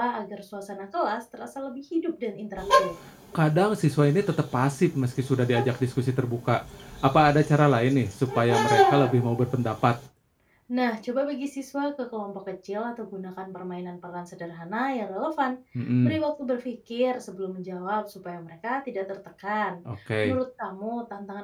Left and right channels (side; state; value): both; identical; correlation 1.00